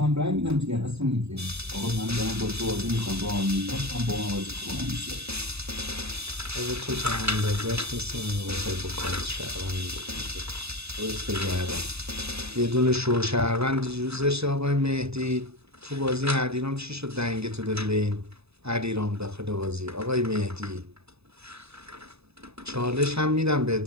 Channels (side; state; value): left; late; 0.79 ms